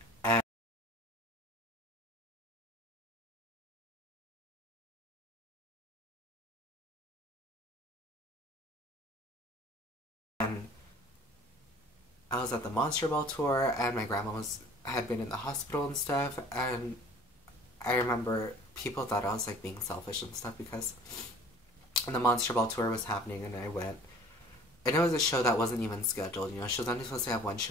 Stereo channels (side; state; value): both; normal; correlation 0.48